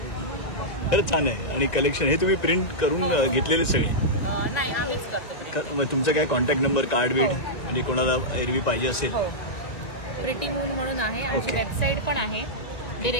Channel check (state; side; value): late; right; 1.9 ms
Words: खरंच छान आहे. आणि कलेक्शन हे तुम्ही प्रिंट करून घेतलेले सगळे. नाही आम्हीच करतो. तुमचा काय कॉन्टॅक्ट नंबर कार्ड बीड म्हणजे कोणाला एरवी पाहिजे असेल. प्रिटी मून म्हणून आहे. आमची वेबसाईट पण आहे.